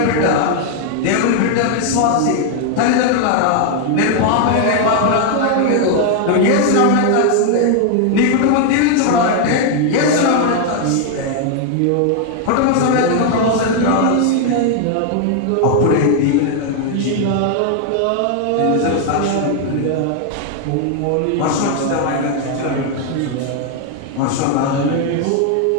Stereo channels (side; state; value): both; different; correlation 0.00